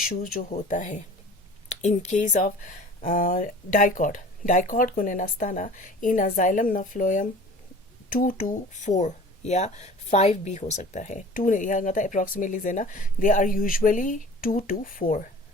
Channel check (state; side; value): normal; both; correlation 0.44